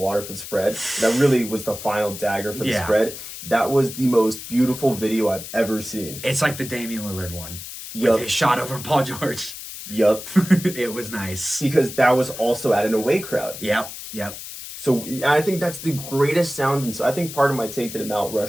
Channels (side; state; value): left; noise; hiss, 11 dB below the sound